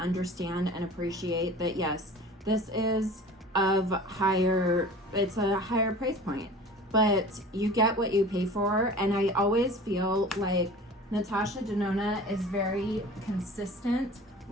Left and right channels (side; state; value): both; normal; correlation 0.41